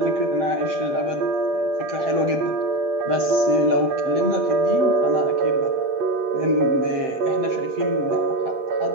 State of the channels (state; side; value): late; left; 7.6 ms